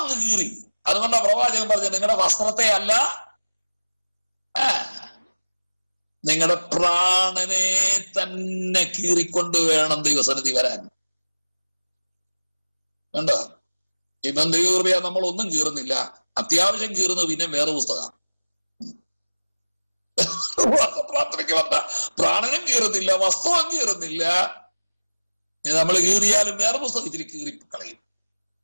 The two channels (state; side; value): inverted; both; correlation -1.00